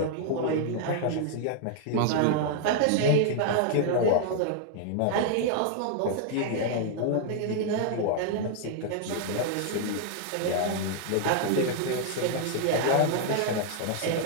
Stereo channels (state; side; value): different; both; correlation -0.01